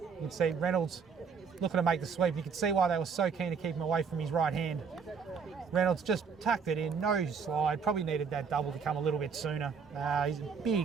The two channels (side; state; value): left; quieter; 5.9 dB